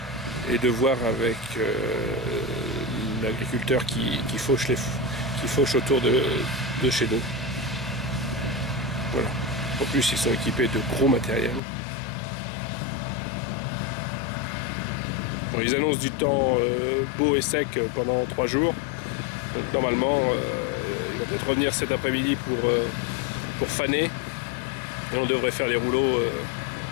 et de voir avec l'agriculteur qui fauche autour de chez nous. Voilà. En plus, ils sont équipés de gros matériel. Bon, ils annoncent du temps beau et sec pendant 3 jours. Donc normalement, il va peut-être revenir cet après-midi pour faner. Et on devrait faire les rouleaux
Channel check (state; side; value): drops out; right; at 11.6 s